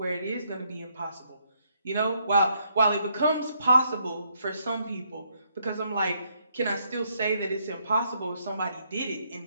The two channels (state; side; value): inverted; both; correlation -0.74